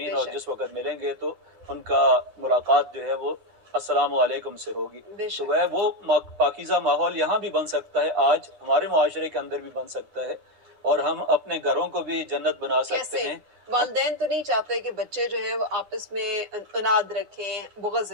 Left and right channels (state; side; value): late; left; 10 ms